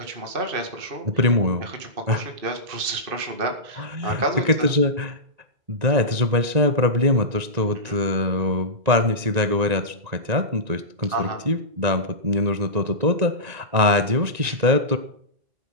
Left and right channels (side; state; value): left; late; 1.9 ms